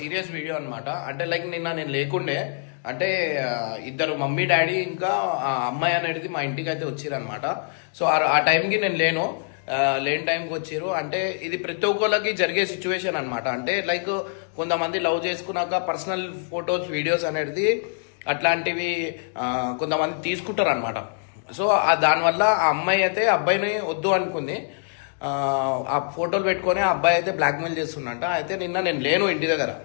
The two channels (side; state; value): right; silent; digital silence